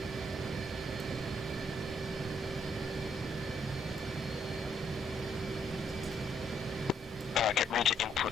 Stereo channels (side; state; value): both; normal; correlation 0.72